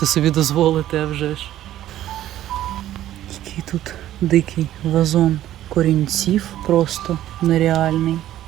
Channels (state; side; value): quieter; left; 13.0 dB